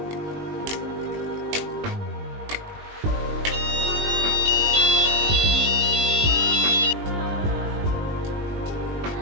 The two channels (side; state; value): left; late; 20 ms